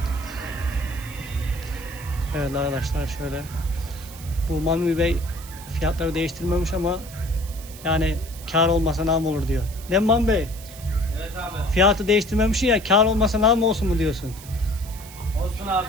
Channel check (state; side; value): noise; right; hiss, 17 dB below the sound